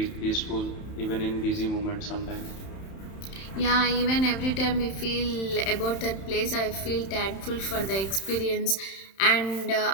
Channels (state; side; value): late; right; 31 ms